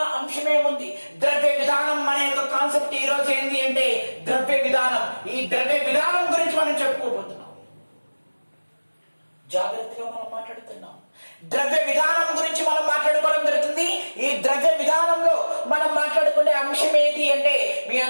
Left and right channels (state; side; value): inverted; both; correlation -1.00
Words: అంశం ఏముంది? ద్రవ్య విధానం అనే ఒక కాన్సెప్ట్ ఈ రోజు ఏంటి అంటే ద్రవ్య విధానం. ఈ ద్రవ్య విధానం గురించి మనం చెప్పుకోబోతున్నాం. జాగ్రత్తగా మనం మాట్లాడుతున్నాం. ద్రవ్య విధానం గురించి మనం మాట్లాడుకోవడం జరుగుతుంది. ఈ ద్రవ్య విధానంలో మనం మాట్లాడుకునే అంశం ఏంటి అంటే మీ